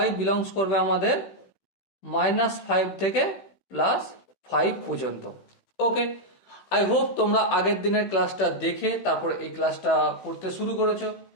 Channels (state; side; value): late; right; 16 ms